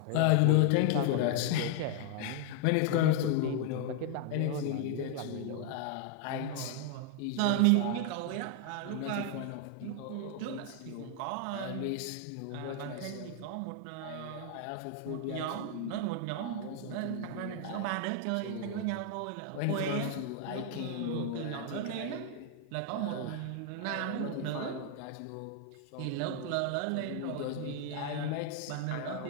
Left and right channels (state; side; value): different; both; correlation 0.00